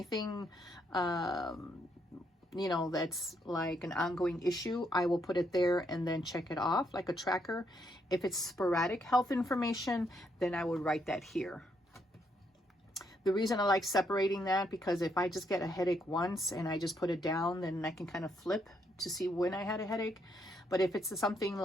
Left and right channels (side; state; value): both; normal; correlation 0.75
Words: you know, that's like an ongoing issue, I will put it there and then check it off like a tracker. If it's sporadic health information, then I would write that here. The reason I like separating that, because if I just get a headache once and I just put it down, then I can kind of flip to see when I had a headache. But if it's something